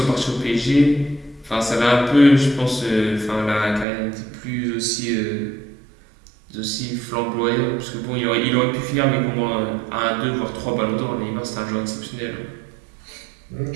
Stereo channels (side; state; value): left; drops out; at 3.9 s